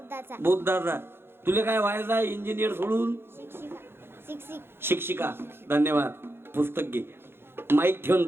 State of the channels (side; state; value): left; late; 0.11 ms